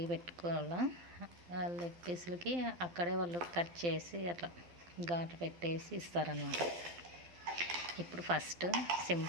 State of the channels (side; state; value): left; late; 12 ms